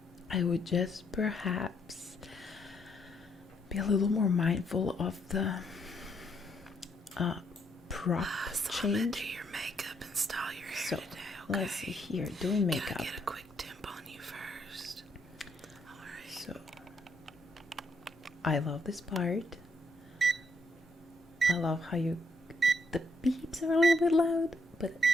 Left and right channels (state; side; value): normal; both; correlation 0.74